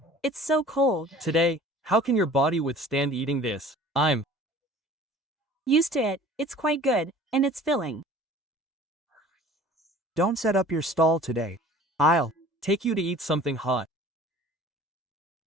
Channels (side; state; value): both; normal; correlation 0.47